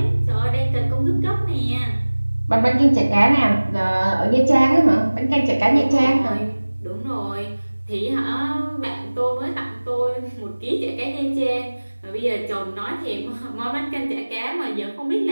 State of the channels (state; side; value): inverted; both; correlation -1.00